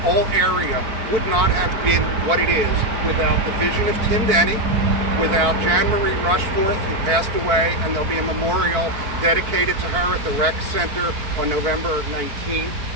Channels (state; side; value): late; left; 4.5 ms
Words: whole area would not have been what it is without the vision of Tim Denny, without Jan Marie Rushforth, who passed away, and there'll be a memorial dedicated to her at the Rec Center on November 19th,